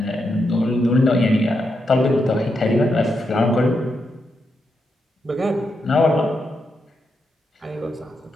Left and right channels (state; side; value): normal; both; correlation 0.83